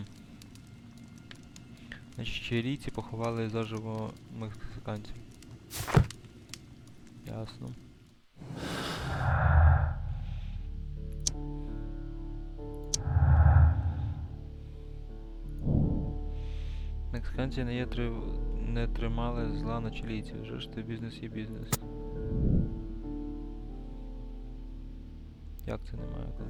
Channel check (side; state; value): both; identical; correlation 1.00